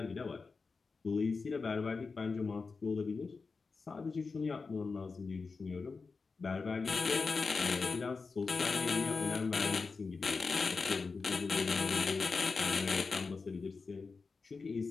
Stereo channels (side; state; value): right; quieter; 4.5 dB